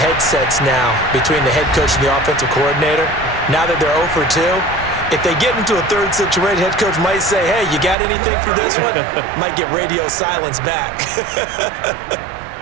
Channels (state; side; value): drops out; left; at 8.0 s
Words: now between the head coach and the offensive coordinator. Now that they're 0 for 2, if they get into a 3rd situation, head coach might say, hey, you got anything for this one? Might get radio silence back.